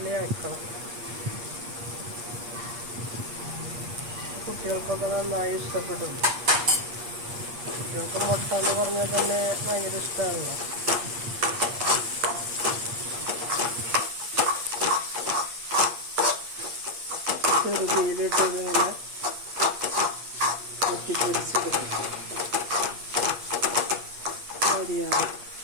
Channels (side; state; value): left; late; 8.5 ms